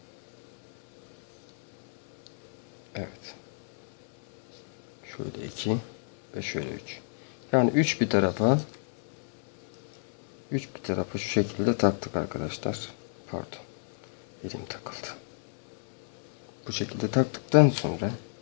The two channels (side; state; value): right; silent; digital silence